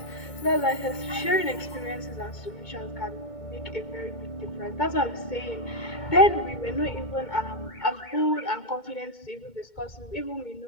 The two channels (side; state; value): right; late; 2.1 ms